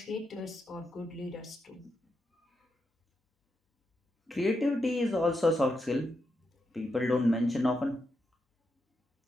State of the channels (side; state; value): both; normal; correlation 0.84